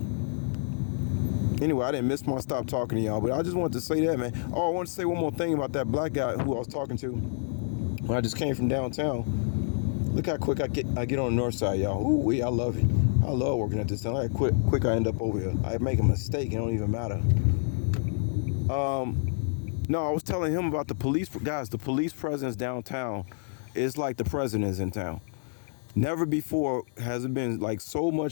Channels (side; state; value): right; silent; digital silence